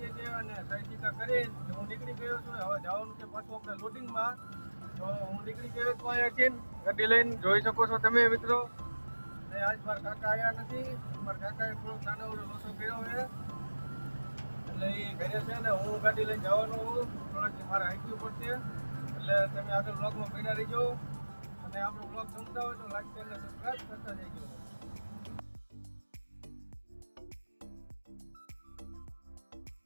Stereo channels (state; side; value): inverted; both; correlation -1.00